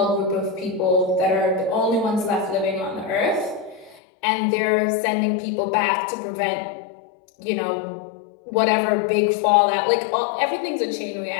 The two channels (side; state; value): right; drops out; at 4.0 s